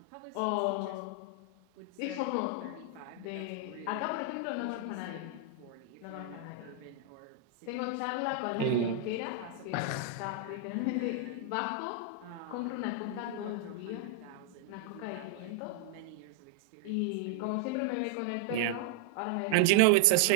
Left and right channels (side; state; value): both; different; correlation 0.00